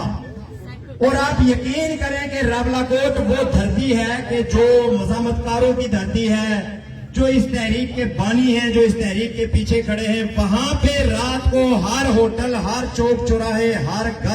اور آپ یقین کریں کہ راولا کوٹ وہ دھرتی ہے کہ جو مزاحمت کاروں کی دھرتی ہے، جو اس تحریک کے بانی ہیں، جو اس تحریک کے پیچھے کھڑے ہیں، وہاں پہ رات کو ہر ہوٹل، ہر چوک چوراہے، ہر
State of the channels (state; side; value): identical; both; correlation 1.00